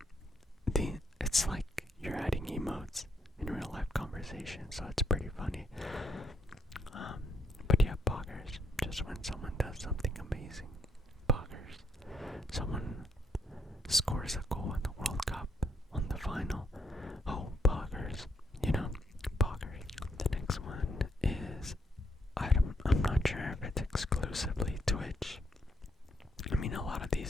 it's like you're adding emotes in real life conversation, so it's pretty funny. But yeah, poggers, just when someone does something amazing. Poggers. Someone scores a goal in the World Cup on the final. Oh, poggers. You know, poggers. The next one is, I'm not sure if it's exclusively Twitch. I mean, a lot of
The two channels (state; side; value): normal; both; correlation 0.74